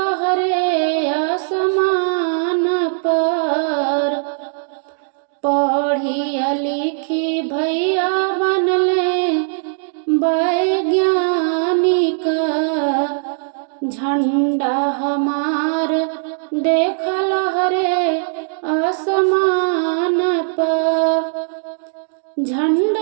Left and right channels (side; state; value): left; silent; digital silence